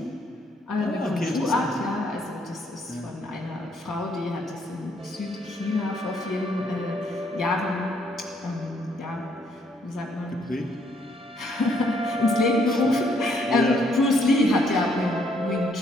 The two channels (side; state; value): both; normal; correlation 0.69